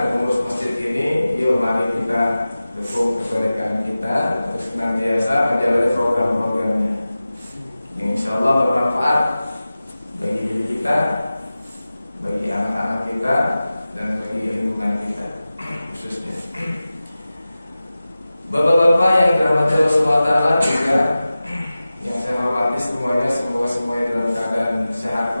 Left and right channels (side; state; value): both; inverted; correlation -0.96